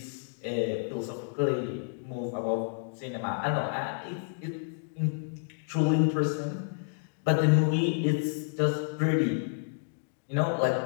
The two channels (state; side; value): silent; right; digital silence